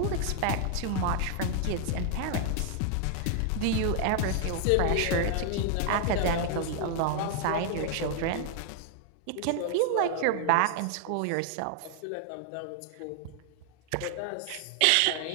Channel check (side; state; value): both; different; correlation 0.00